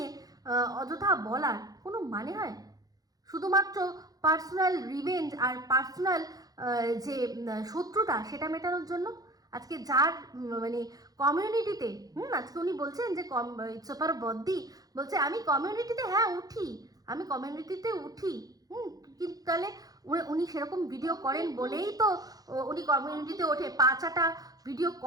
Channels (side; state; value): left; late; 0.18 ms